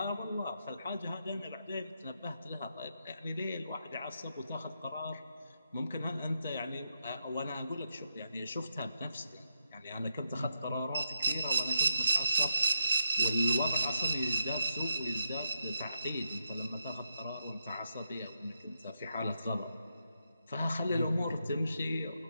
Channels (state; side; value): inverted; both; correlation -0.82